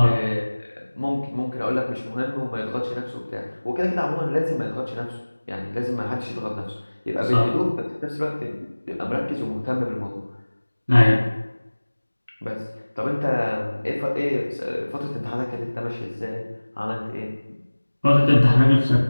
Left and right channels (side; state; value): both; inverted; correlation -1.00